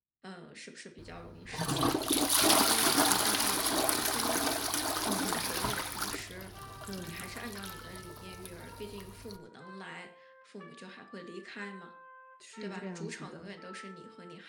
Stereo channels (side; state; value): both; identical; correlation 1.00